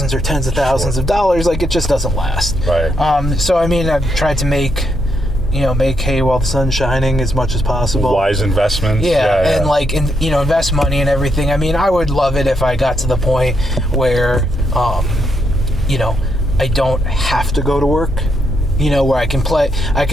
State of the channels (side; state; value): both; normal; correlation 0.79